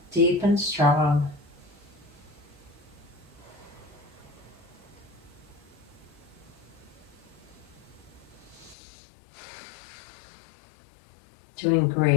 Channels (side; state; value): right; drops out; at 8.8 s